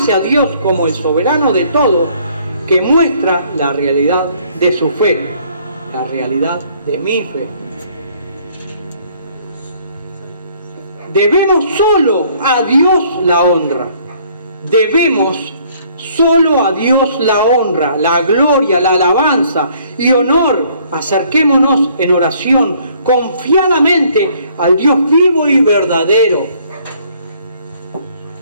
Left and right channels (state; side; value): inverted; both; correlation -0.61